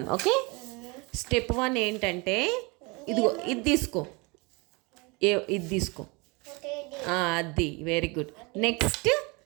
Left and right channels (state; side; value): quieter; left; 27.5 dB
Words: ఓకే. స్టెప్ 1 ఏంటంటే ఇదిగో ఇది తీసుకో, ఇది తీసుకో. అది వెరీ గుడ్. నెక్స్ట్